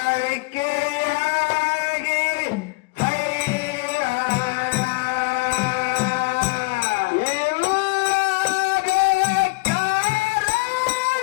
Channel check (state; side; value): quieter; right; 27.0 dB